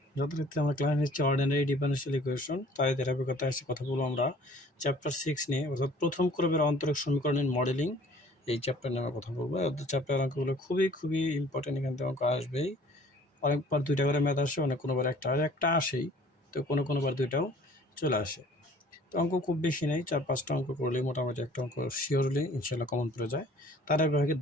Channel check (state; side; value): normal; both; correlation 0.52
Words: যথারীতি আমরা ক্লাস নিচ্ছি অর্ডিনারি ডিফারেনশিয়াল ইকুয়েশন। তাই ধারাবাহিকতায় এসে কথা বলবো আমরা চ্যাপ্টার 6 নিয়ে, অর্থাৎ প্রথম ক্রমের অন্তরক সমীকরণের মডেলিং। এই চ্যাপ্টার নিয়ে আমরা কথা বলবো। চ্যাপ্টার অঙ্কগুলো খুবই ইম্পর্টেন্ট, এখান থেকে অঙ্ক আসবেই। অনেকবার দুইটা করে ম্যাথ আসে, অনেক কোনোবার একটা আসেই, তো কোনোবার দুইটাও চলে আসে। তো অঙ্ক খুব বেশি নেই, 4-5টা অঙ্ক করলেই মোটামুটি একটা অঙ্ক শিওরলি ইনশাল্লাহ কমন পড়ে যায়। তার